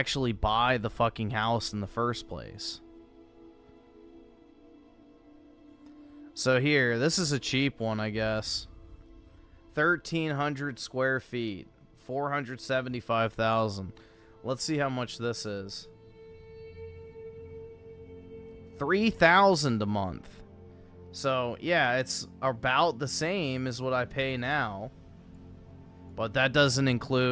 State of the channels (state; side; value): identical; both; correlation 1.00